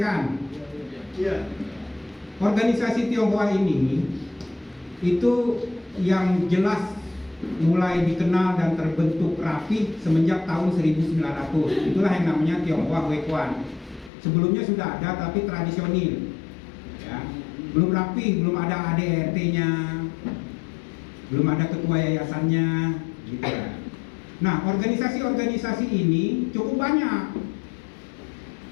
Iya. Organisasi Tionghoa ini itu yang jelas mulai dikenal dan terbentuk rapi semenjak tahun 1900. Itulah yang namanya Tionghoa Huekuan. Sebelumnya sudah ada tapi tradisional, ya. Belum rapi, belum ada ADRT-nya, belum ada ketua yayasannya, gitu ya. Nah, organisasi-organisasi ini cukup banyak.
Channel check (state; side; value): drops out; right; at 14.1 s